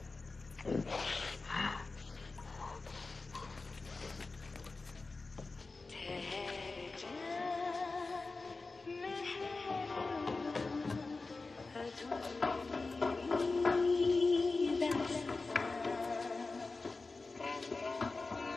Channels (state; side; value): quieter; right; 3.7 dB